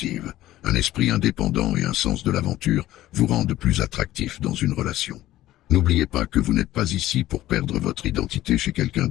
Un esprit indépendant et un sens de l'aventure vous rendent plus attractif dans une relation. N'oubliez pas que vous n'êtes pas ici pour perdre votre identité chez quelqu'un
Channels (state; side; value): quieter; right; 14.9 dB